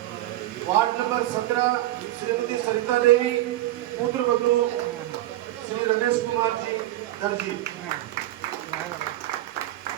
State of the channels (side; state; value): left; quieter; 15.2 dB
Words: ward number 17 Shrimati Sarita Devi, पुत्र बंधु Shri Ramesh Kumar ji Darji,